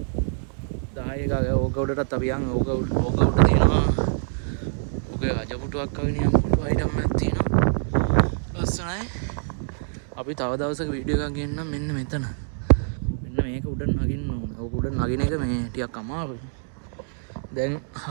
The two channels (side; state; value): left; silent; digital silence